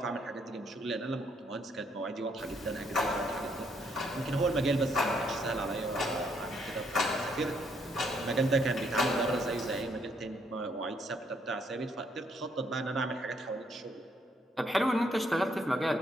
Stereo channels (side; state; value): both; normal; correlation 0.71